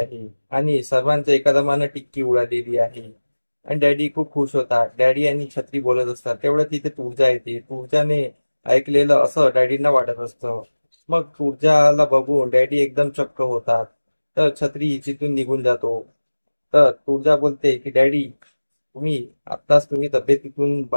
आणि सर्वांच्या एका दमानं टिक्की उडालेली आहे. आणि डॅडी खूप खुश होतात. डॅडी आणि छत्री बोलत असतात, तेवढं तिथे तुळजा येते. तुळजाने ऐकलेलं असं डॅडींना वाटत असतं. मग तुळजाला बघून डॅडी एकदम चक्क होतात. तर छत्री तिथून निघून जातो. तर तुळजा बोलते की डॅडी तुम्ही तब्येतीतून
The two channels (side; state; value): both; inverted; correlation -1.00